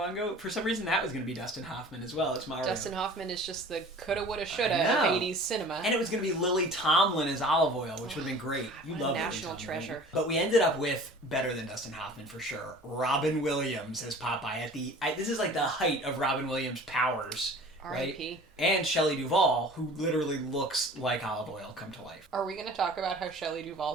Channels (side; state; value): both; normal; correlation 0.44